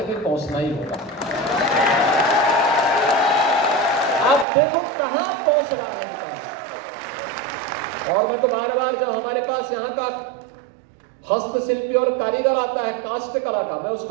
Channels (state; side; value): drops out; left; at 4.5 s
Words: भी पहुंचना ही होगा। आप देखो कहां पहुंच रहा है। और मैं तो बार बार जब हमारे पास यहाँ का हस्तशिल्पी और कारीगर आता है काष्ट कला का, मैं